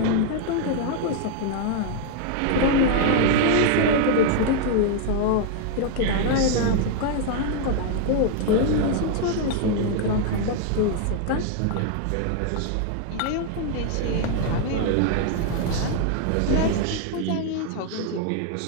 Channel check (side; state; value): both; different; correlation 0.00